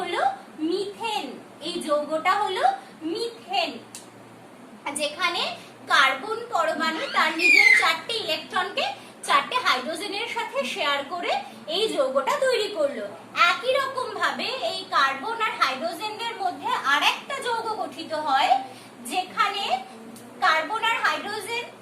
হলো মিথেন। এই যৌগটা হলো মিথেন, যেখানে কার্বন পরমাণু তার নিজের 4টে ইলেকট্রনকে 4টে হাইড্রোজেনের সাথে শেয়ার করে এই যৌগটা তৈরি করলো। একই রকম ভাবে এই কার্বন আর হাইড্রোজেনদের মধ্যে আরেকটা যৌগ গঠিত হয়, যেখানে কার্বন আর হাইড্রোজেন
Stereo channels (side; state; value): both; identical; correlation 1.00